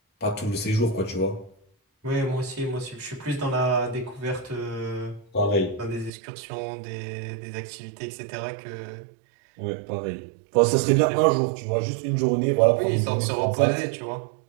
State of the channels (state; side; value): drops out; left; at 6.1 s